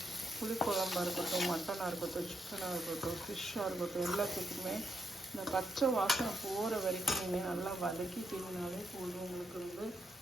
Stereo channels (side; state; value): both; normal; correlation 0.80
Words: புளிக்குழம்பாக இருக்கட்டும், மட்டனாக இருக்கட்டும், சிக்கனாக இருக்கட்டும், ஃபிஷ்ஷாக இருக்கட்டும், எல்லாத்துக்குமே இந்த பச்சை வாசனை போகிற வரைக்கும் நீங்கள் நல்லா வதக்கி தின்னாலே போதும். உங்களுக்கு வந்து